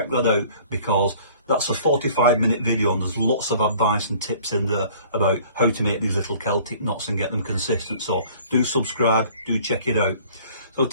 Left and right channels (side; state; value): both; inverted; correlation -0.51